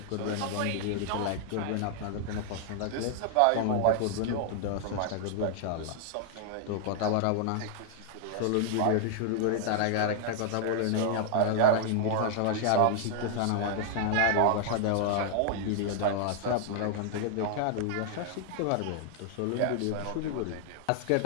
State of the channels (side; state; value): both; different; correlation 0.00